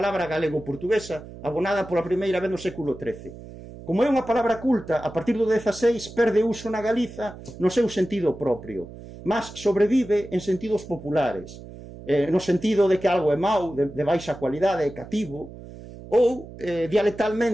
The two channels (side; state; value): right; noise; hum, 15 dB below the sound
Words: galego-portuguesa abonada pola primeira vez no século XIII. Como é unha palabra culta, a partir do XVI perde uso na Galiza no seu sentido propio, mas sobrevive en sentidos populares, no sentido de que algo é mau, de baixa cualidade, é cativo, ou